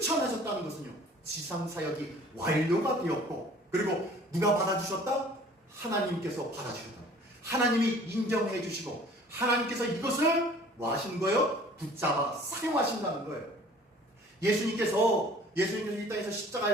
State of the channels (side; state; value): both; normal; correlation 0.50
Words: 것은요. 지상사역이 완료가 되었고 그리고 누가 받아주셨다? 하나님께서 받아주셨다. 하나님이 인정해 주시고 하나님께서 이것을 뭐 하시는 거예요? 붙잡아 사용하신다는 거예요. 예수님께서 이 땅에서